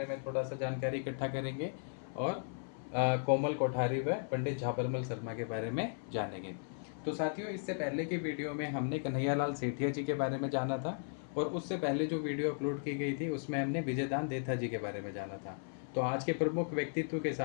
में थोड़ा सा जानकारी इकट्ठा करेंगे और कोमल कोठारी व पंडित झाबरमल शर्मा के बारे में जानेंगे। तो साथियों, इससे पहले की वीडियो में हमने कन्हैयालाल सेठिया जी के बारे में जाना था, और उससे पहले जो वीडियो अपलोड की गई थी उसमें हमने विजयदान देथा जी के बारे में जाना था। तो आज के प्रमुख व्यक्तित्व के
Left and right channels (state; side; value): silent; right; 54 dB below the other